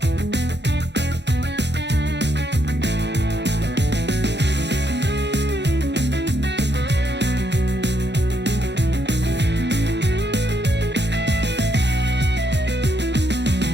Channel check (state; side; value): late; left; 0.50 ms